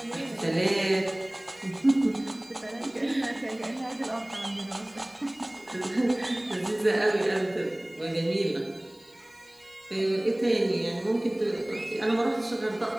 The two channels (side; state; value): left; noise; hiss, 29 dB below the sound